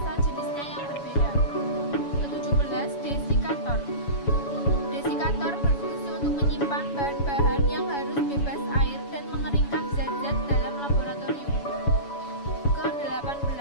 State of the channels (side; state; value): right; late; 7.1 ms